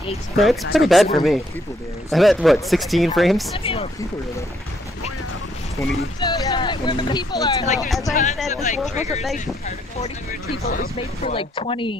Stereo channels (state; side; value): normal; both; correlation 0.71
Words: No, it's pretty bad for me. I'm at what, 16 frames? That's a lot of people here though. 20. Where the people are, like, there's As I tons said, of, this like, world wasn't triggers made and for particles. 40 people. It was made for like